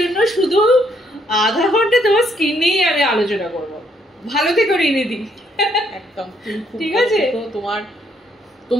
শুধু আধা ঘন্টা তোমার স্কিন নিয়েই আমি আলোচনা করব। ভালো থেকো রিনিদি। একদম ঠিক আছে।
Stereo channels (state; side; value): normal; both; correlation 0.70